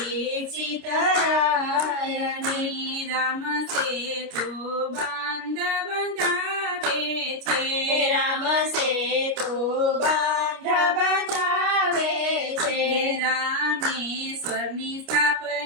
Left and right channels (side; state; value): left; late; 29 ms